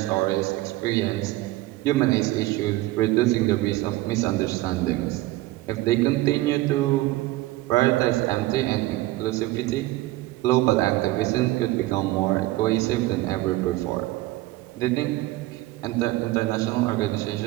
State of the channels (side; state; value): left; quieter; 17.8 dB